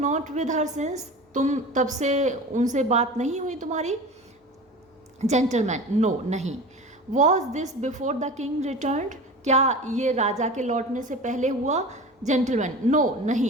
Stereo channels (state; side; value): normal; both; correlation 0.34